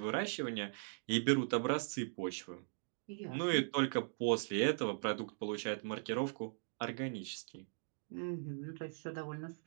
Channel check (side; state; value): left; silent; digital silence